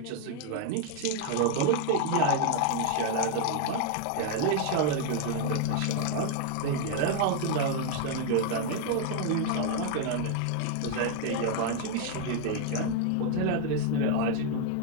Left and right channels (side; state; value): both; different; correlation 0.00